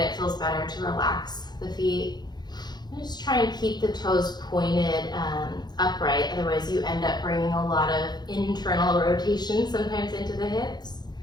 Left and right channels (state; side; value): late; right; 0.20 ms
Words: feels better to relax the feet. And just try and keep the toes pointed upright, otherwise you end up bringing a lot of internal rotation sometimes into the hips.